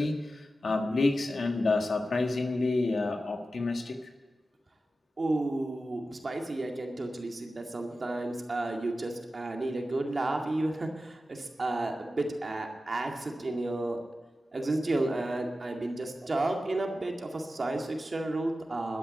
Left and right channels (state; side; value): normal; both; correlation 0.93